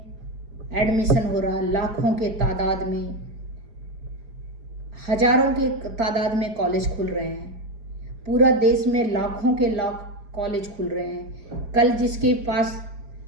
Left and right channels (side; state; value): left; late; 4.9 ms